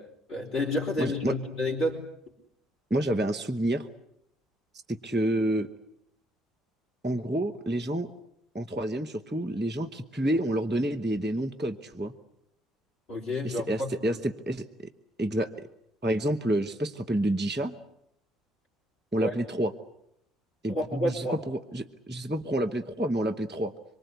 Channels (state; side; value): normal; both; correlation 0.72